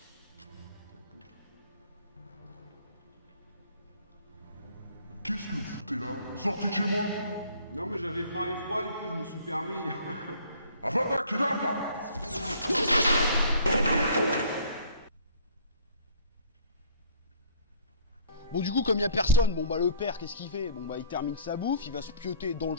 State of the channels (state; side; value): inverted; both; correlation -0.53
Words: Qu'est-ce que vous foutez là? Sortez de chez moi! Non, mais j'avais faim et froid, du coup, je me suis permis. Avada Kedavra! Bon, du coup, comme il n'y a personne, bon, bah, le père, qu'est-ce qu'il fait? Bon, bah, il termine sa bouffe, il va se pioter dans le